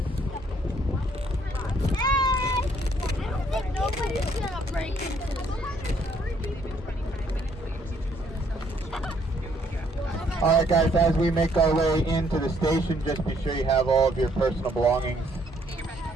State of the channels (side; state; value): both; normal; correlation 0.67